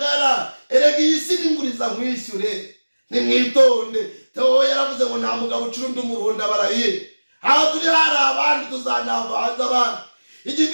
erega iyi si n'inguriza nkwishyure nimwitonde Theo yaravuze ngo nta mugabo ucurundi umuruhunda barahiye aho turi hari abandi tuzanavanza abandi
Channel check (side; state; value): both; inverted; correlation -1.00